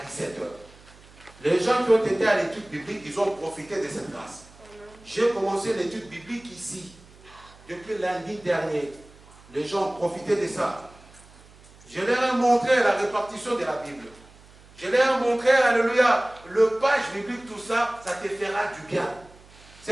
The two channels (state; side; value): noise; right; hum, 24 dB below the sound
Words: 17h. Les gens qui ont été à l'étude biblique, ils ont profité de cette grâce. J'ai commencé l'étude biblique ici, depuis lundi dernier. Les gens ont profité de ça. Je leur ai montré la répartition de la Bible. Je leur ai montré, alléluia, le page biblique, tout ça, ça te fera du bien.